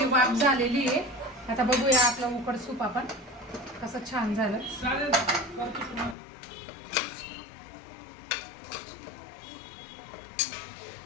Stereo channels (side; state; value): right; drops out; at 6.2 s